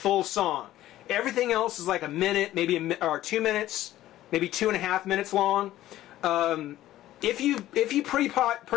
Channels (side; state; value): right; quieter; 14.3 dB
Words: song. Everything else is like a minute, maybe or 2 minutes, maybe 2.5 minutes long. If you